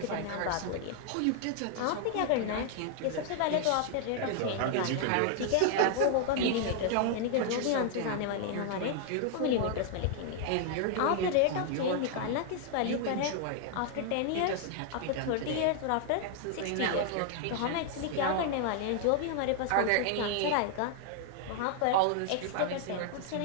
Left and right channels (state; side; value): different; both; correlation 0.00